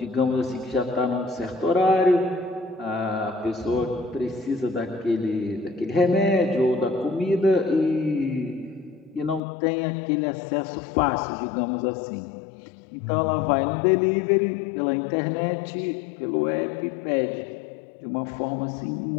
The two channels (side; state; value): right; drops out; at 9.4 s